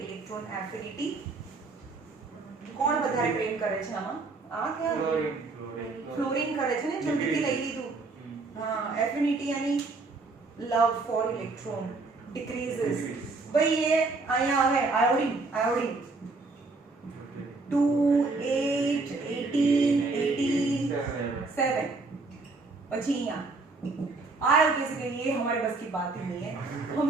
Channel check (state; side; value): quieter; left; 3.7 dB